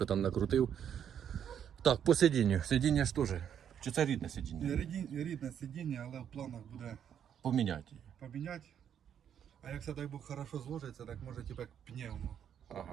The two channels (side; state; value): left; quieter; 8.9 dB